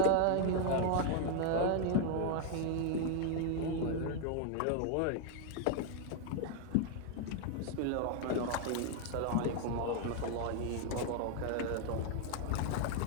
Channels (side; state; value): both; different; correlation 0.00